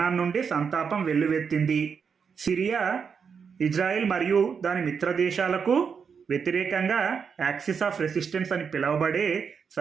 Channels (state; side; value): quieter; left; 6.3 dB